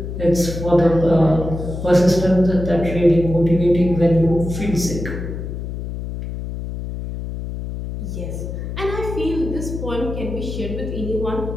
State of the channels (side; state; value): left; noise; hum, 6 dB below the sound